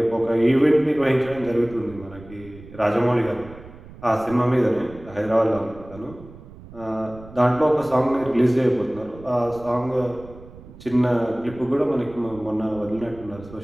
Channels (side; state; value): right; noise; rumble, 18 dB below the sound